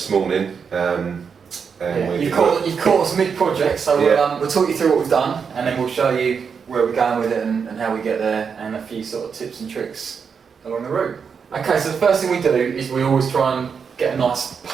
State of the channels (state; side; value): quieter; left; 6.2 dB